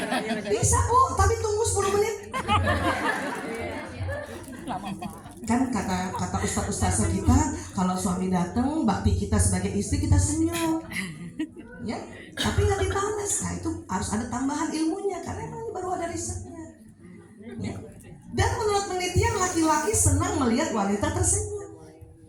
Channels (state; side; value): identical; both; correlation 1.00